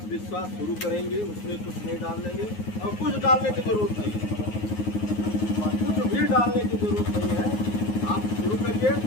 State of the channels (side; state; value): right; late; 9.5 ms